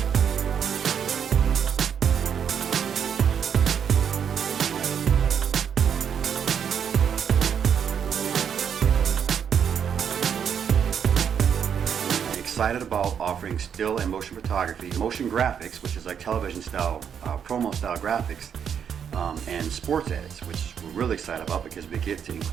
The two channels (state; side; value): quieter; left; 7.9 dB